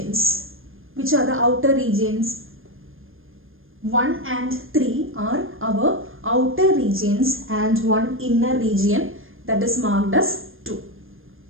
Which are the outer regions? 1 and 3 are our outer regions and one inner region that is marked as 2.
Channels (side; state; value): left; late; 0.59 ms